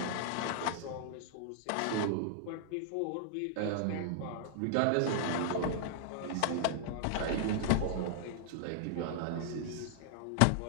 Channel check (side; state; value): both; different; correlation -0.01